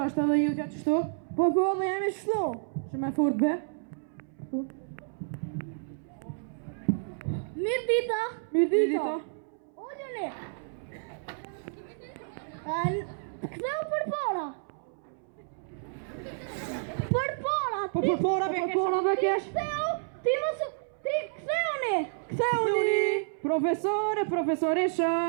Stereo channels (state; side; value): silent; left; 58 dB below the other